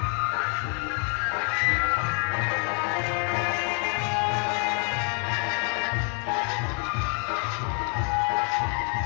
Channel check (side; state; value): right; quieter; 39.7 dB